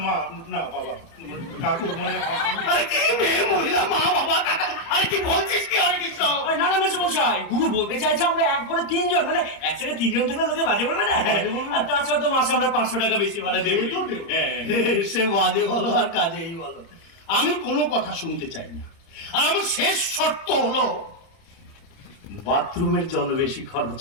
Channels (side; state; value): right; late; 30 ms